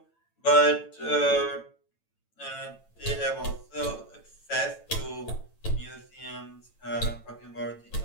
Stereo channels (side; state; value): right; late; 9.0 ms